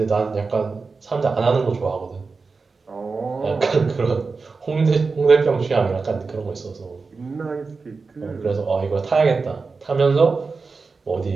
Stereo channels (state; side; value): quieter; left; 4.4 dB